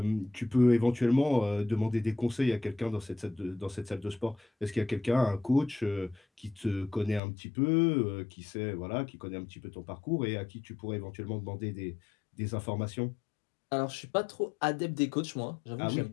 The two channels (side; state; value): right; drops out; at 7.2 s